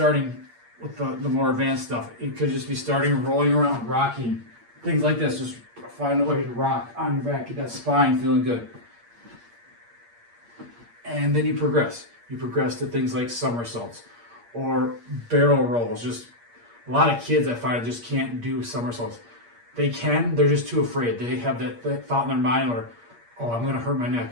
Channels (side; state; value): left; late; 8.5 ms